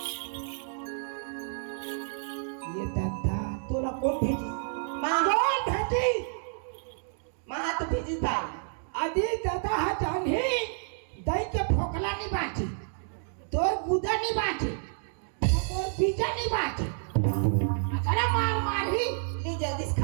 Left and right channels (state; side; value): silent; left; digital silence